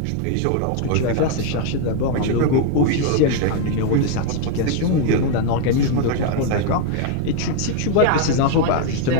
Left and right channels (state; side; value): different; both; correlation 0.01